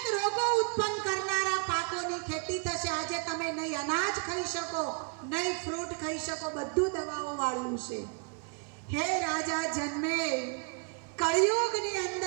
રોગો ઉત્પન્ન કરનારા પાકોની ખેતી થશે. આજે તમે નહીં અનાજ ખાઈ શકો, નહીં ફ્રૂટ ખાઈ શકો, બધું દવાઓ વાળું છે. હે રાજા જન્મે, કળિયુગની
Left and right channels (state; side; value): quieter; left; 38.6 dB